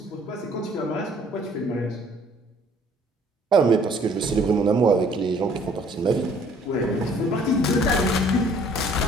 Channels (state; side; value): normal; both; correlation 0.58